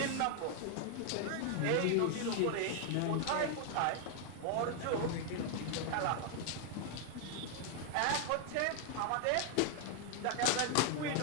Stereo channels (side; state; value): both; different; correlation 0.00